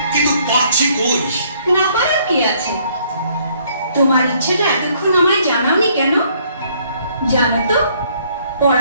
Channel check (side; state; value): both; inverted; correlation -0.65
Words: কিন্তু পাচ্ছি কই? না পারার কি আছে? তোমার ইচ্ছেটা এতক্ষণ আমায় জানাওনি কেন? জানো তো,